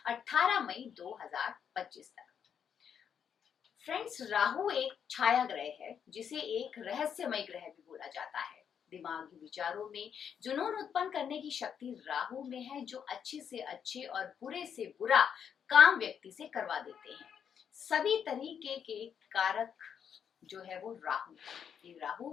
18 मई 2025 तक। फ्रेंड्स, राहु एक छाया ग्रह है जिसे एक रहस्यमय ग्रह भी बोला जाता है। दिमागी विचारों में जुनून उत्पन्न करने की शक्ति राहु में है, जो अच्छे से अच्छे और बुरे से बुरा काम व्यक्ति से करवा देते हैं। सभी तरीके के कारक जो है वो राहु है। ये राहु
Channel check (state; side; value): quieter; right; 7.8 dB